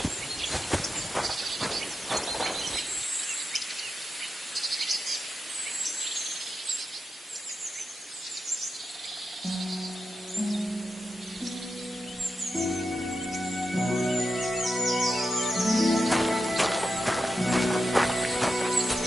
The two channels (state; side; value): normal; both; correlation 0.89